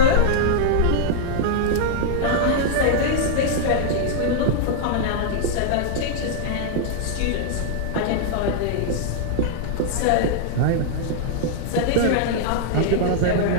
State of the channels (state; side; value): different; both; correlation -0.01